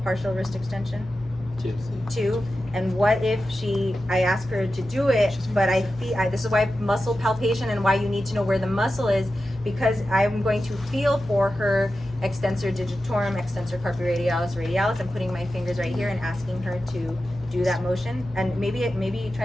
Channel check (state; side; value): normal; both; correlation 0.92